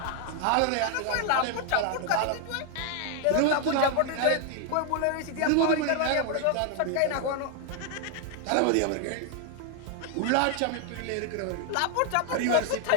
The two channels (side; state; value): both; different; correlation 0.00